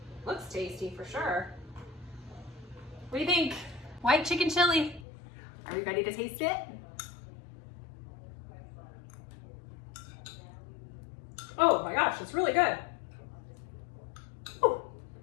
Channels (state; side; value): drops out; right; at 5.1 s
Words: Looks tasty for sure. What do you think? White chicken chili. Are we ready to taste it? Oh my gosh, it's really good. Ooh,